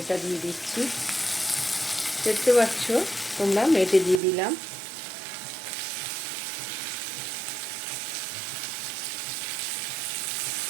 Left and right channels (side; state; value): left; drops out; at 4.2 s